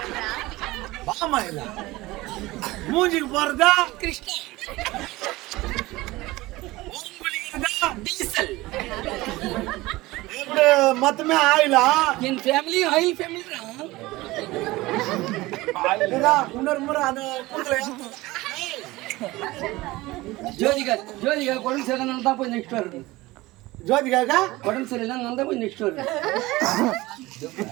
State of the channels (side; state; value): left; quieter; 19.7 dB